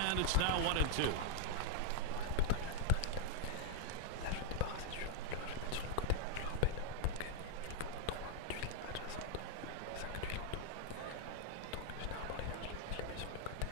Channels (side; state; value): both; different; correlation 0.00